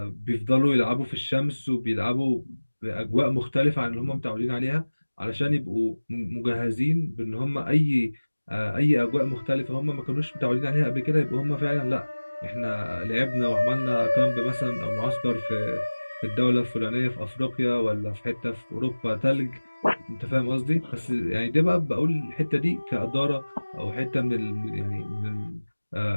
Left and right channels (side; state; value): both; inverted; correlation -1.00